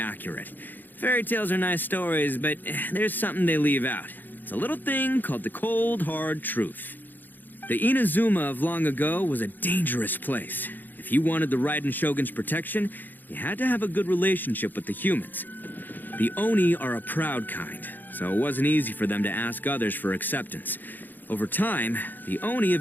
Fairy tales are nice stories, but there's something they leave out. It's a little thing called the cold, hard truth. The Inazuma of long ago was a dangerous place. If you wanted the Raiden Shogun's protection, you had to have a good relationship with the humans. The Oni are a proud kind, so it wasn't easy for them to ask others for acceptance. Over time, the Oni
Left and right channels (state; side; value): late; right; 0.088 ms